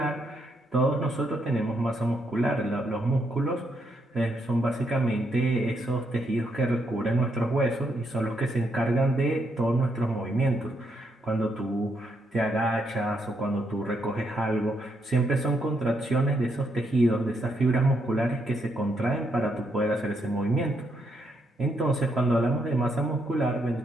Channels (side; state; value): both; normal; correlation 0.77